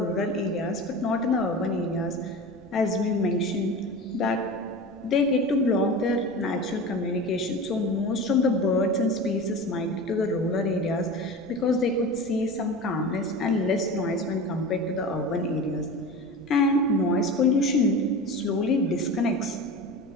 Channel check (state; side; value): noise; left; rumble, 30 dB below the sound